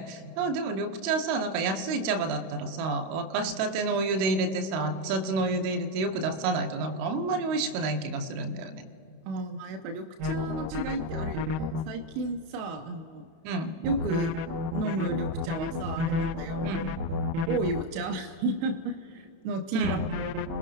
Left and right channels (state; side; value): late; left; 31 ms